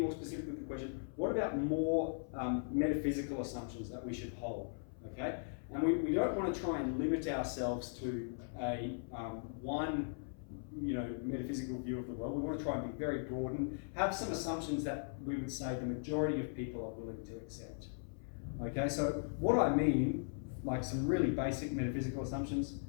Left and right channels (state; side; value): silent; right; 52 dB below the other